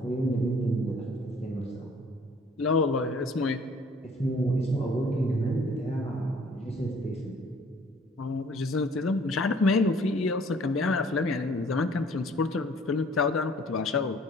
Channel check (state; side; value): normal; both; correlation 0.56